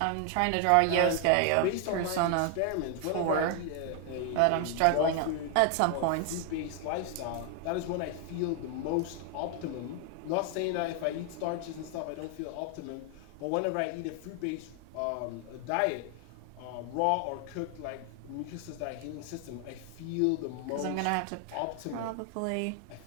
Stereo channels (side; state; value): both; different; correlation 0.00